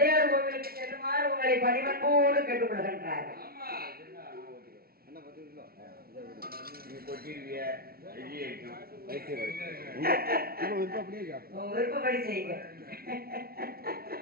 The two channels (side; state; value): left; late; 0.44 ms